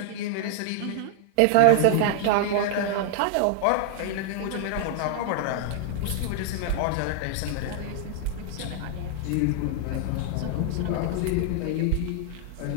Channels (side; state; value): both; different; correlation -0.01